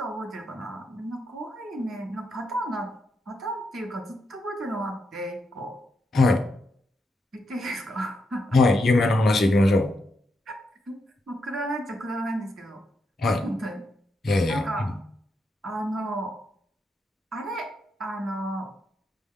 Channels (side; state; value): both; normal; correlation 0.82